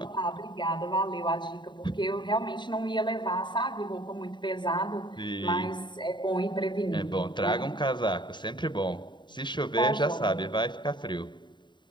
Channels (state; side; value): late; right; 0.22 ms